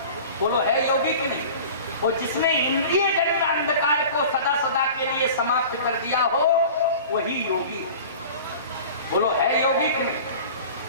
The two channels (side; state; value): both; inverted; correlation -0.40